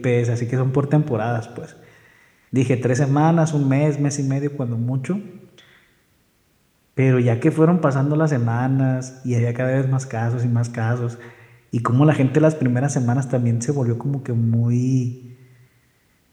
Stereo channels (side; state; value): both; identical; correlation 1.00